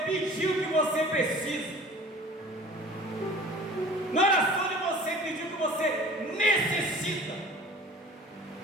pediu que você precisa, não é oração que você pediu que você necessita,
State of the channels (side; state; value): both; normal; correlation 0.44